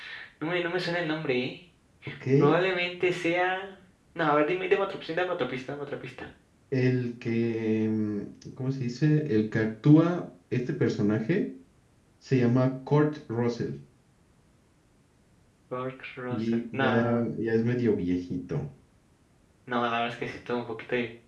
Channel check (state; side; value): identical; both; correlation 1.00